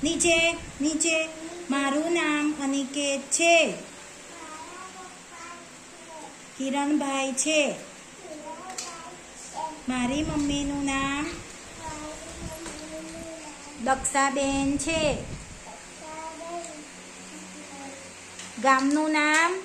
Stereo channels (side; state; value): both; identical; correlation 1.00